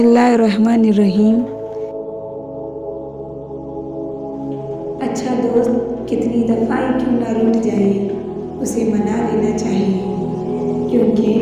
अच्छा दोस्त कितनी दफ़ा ही क्यों ना रूठ जाए, उसे मना लेना चाहिए, क्योंकि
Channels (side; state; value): both; identical; correlation 1.00